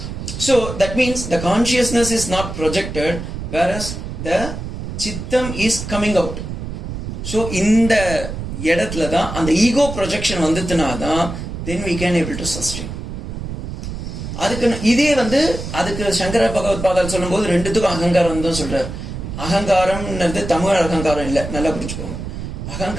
So that means the consciousness is not projected whereas the சித்தம் இஸ் கம்மிங் அவுட். ஸோ இந்த இடத்துல தான் அந்த ஈகோ ப்ரொஜெக்ஷன் வந்துட்டுனா தான் தென் we can able to sustain. அதுக்கு இதே வந்து அதுக்கு சங்கர பகவத் பாதால் சொல்லும் போது ரெண்டுத்துக்கும் அகங்காரம் தான் சொல்றாரு. அகங்காரம்ன்றது தமிழ் அகங்காரம் இல்லை, நல்லா புரிஞ்சுக்கோங்க.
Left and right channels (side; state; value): right; noise; rumble, 7 dB below the sound